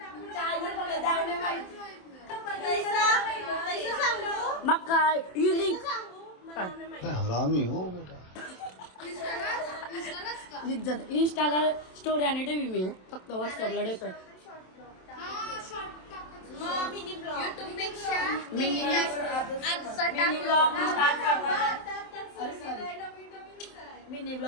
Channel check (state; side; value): late; right; 27 ms